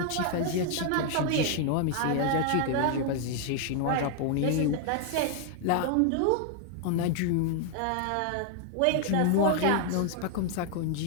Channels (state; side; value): different; both; correlation 0.00